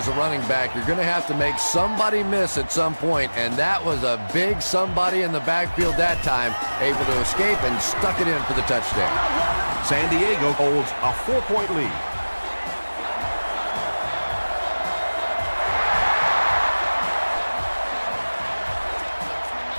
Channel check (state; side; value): inverted; both; correlation -1.00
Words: a running back, you're going to have to make somebody miss at some point, and that was a big somebody in the backfield that time, able to escape and stuck it in for the touchdown. San Diego holds a 4-point lead.